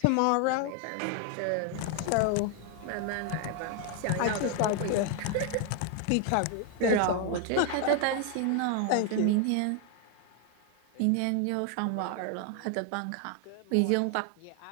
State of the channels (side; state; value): both; different; correlation 0.00